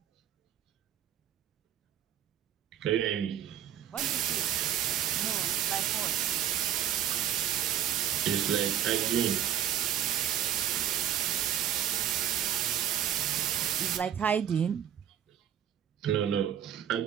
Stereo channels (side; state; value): left; quieter; 10.3 dB